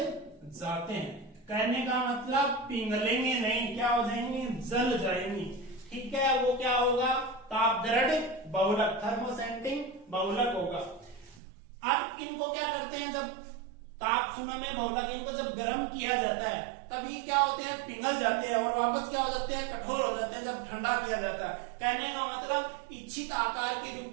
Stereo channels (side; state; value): left; drops out; at 11.4 s